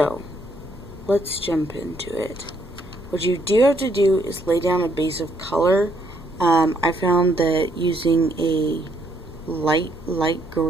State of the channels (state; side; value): normal; both; correlation 0.71